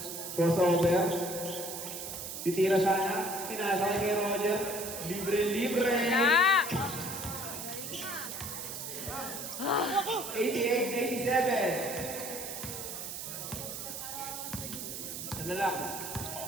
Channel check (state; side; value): noise; right; hiss, 7 dB below the sound